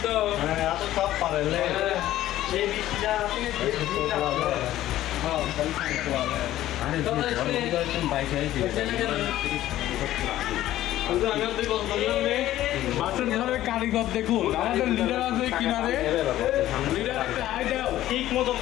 তো, এত সব পারে এই বৃষ্টিটা বাসন ঘরের কারিগর দেখুন, আমাদের লিডার আছে কিনারে, লিডার একটা হাই দাও ঠিক মতো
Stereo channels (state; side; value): quieter; right; 14.0 dB